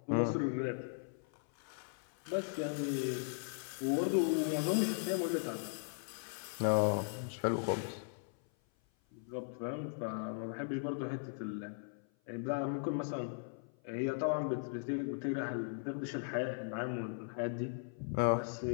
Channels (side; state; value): right; silent; 52 dB below the other